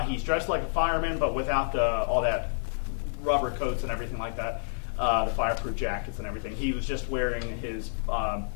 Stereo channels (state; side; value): silent; right; digital silence